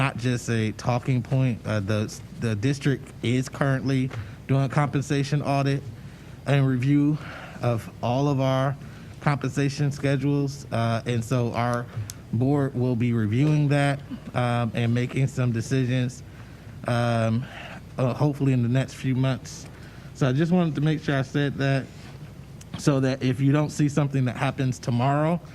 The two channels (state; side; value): identical; both; correlation 1.00